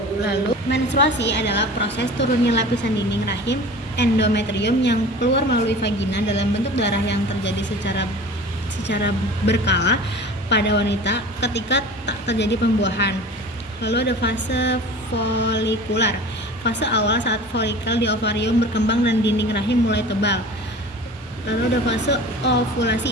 Lalu menstruasi adalah proses turunnya lapisan dinding rahim endometrium yang keluar melalui vagina dalam bentuk darah yang terjadi secara berkala pada wanita ketika tak terjadi pembuahan. Lalu ada fase folikular, fase awal saat folikel di ovarium berkembang dan dinding rahim mulai tebal. Lalu ada fase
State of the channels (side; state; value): both; normal; correlation 0.39